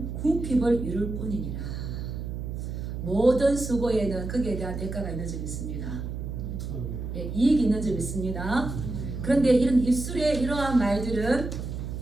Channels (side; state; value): right; noise; hum, 6 dB below the sound